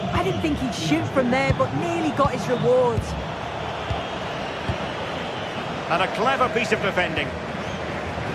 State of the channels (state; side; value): identical; both; correlation 1.00